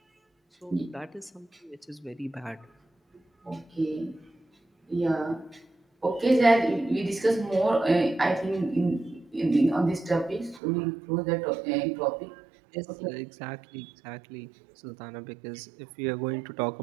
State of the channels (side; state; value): left; drops out; at 10.6 s